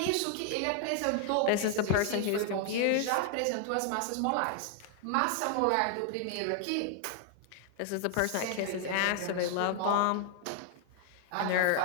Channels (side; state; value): both; different; correlation 0.00